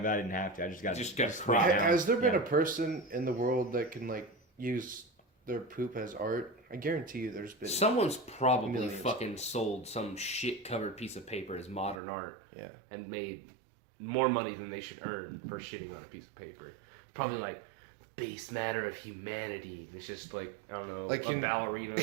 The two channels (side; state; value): left; drops out; at 12.0 s